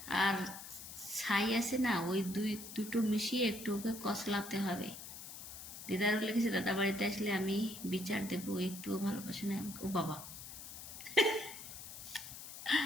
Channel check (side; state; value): left; noise; hiss, 11 dB below the sound